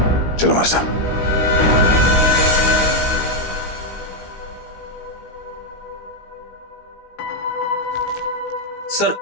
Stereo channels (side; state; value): right; late; 17 ms